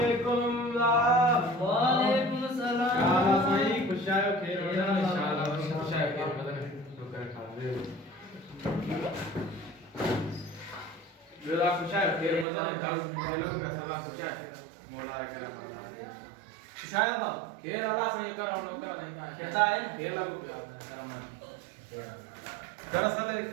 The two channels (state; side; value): drops out; left; at 12.5 s